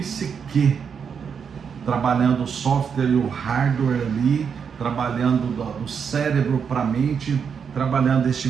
trabalhando o software e o hardware ali, trabalhando do cérebro para a mente, trabalhando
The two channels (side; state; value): left; quieter; 6.7 dB